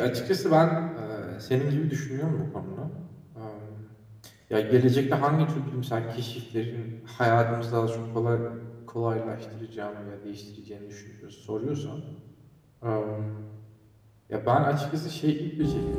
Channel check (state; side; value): identical; both; correlation 1.00